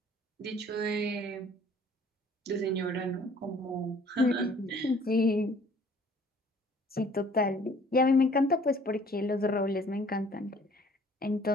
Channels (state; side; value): normal; both; correlation 0.55